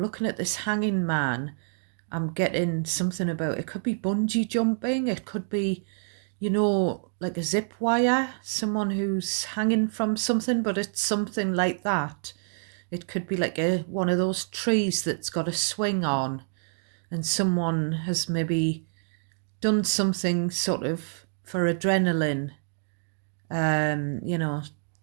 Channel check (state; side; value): silent; left; digital silence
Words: looking at this Hanging Man, I'm getting something about, it could be bungee jumping, it could be, like a zip wire, someone who's hanging from something, but it's something like that. It could be like one of those trees that's got a swing on, and someone has maybe done something sort of for adrenaline, and